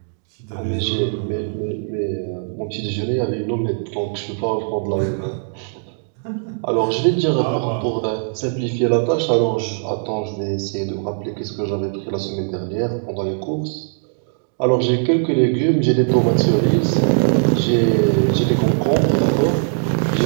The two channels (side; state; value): left; silent; digital silence